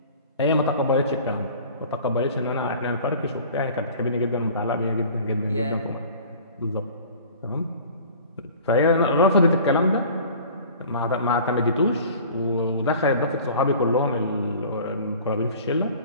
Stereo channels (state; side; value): inverted; both; correlation -0.45